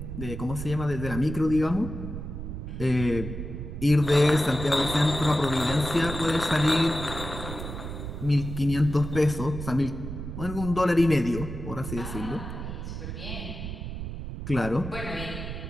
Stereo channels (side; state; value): right; noise; rumble, 7 dB below the sound